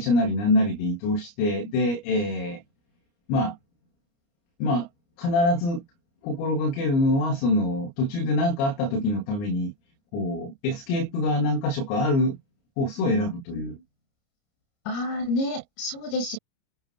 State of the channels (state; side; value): late; right; 29 ms